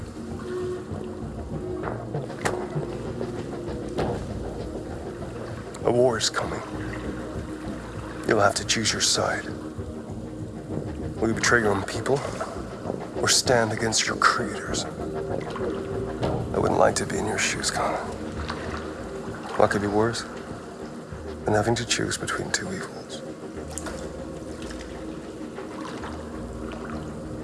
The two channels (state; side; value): identical; both; correlation 1.00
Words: A war is coming. You'll have to choose your side. Will you betray your own people, or stand against your creators? I wouldn't like to be in your shoes, Connor. What could be worse than having to choose between two evils?